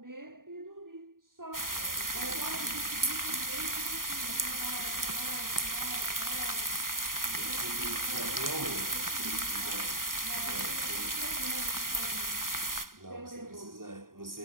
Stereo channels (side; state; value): left; late; 0.91 ms